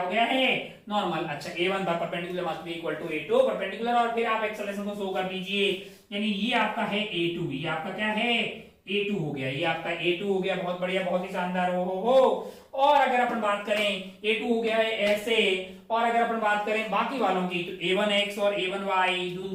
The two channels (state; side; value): identical; both; correlation 1.00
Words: गया है नॉर्मल। अच्छा a1 perpendicular must be equal to a2 perpendicular, और फिर आप एक्सेलरेशन को शो कर दीजिए, यानी ये आपका है a2, ये आपका क्या है a2 हो गया, ये आपका a2 हो गया। बहुत बढ़िया, बहुत ही शानदार। हो। और अगर अपन बात करें a2 हो गया है ऐसे, और अगर अपन बात करें बाकी वालों की तो a1x और a1y